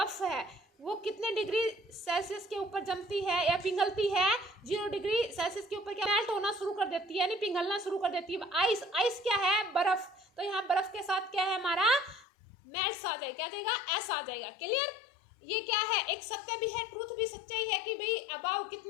है वो कितने डिग्री सेल्सियस के ऊपर जमती है या पिघलती है। 0 डिग्री सेल्सियस के ऊपर क्या मेल्ट होना शुरू कर देती है, यानी पिघलना शुरू कर देती है। आइस, आइस क्या है, बर्फ। तो यहाँ बर्फ के साथ क्या है हमारा, मेल्ट्स आ जाएगा, क्या आ जाएगा, एस आ जाएगा। क्लियर। ये क्या है, एक सत्य भी है, ट्रूथ भी सच्चाई है कि भाई अबाव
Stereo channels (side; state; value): right; drops out; at 12.2 s